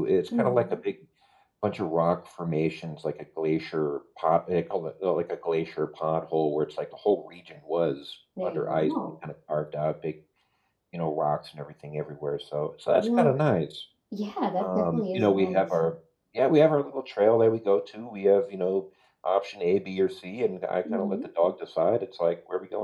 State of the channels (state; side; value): identical; both; correlation 1.00